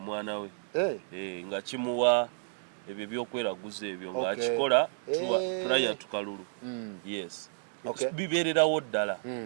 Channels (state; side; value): silent; left; digital silence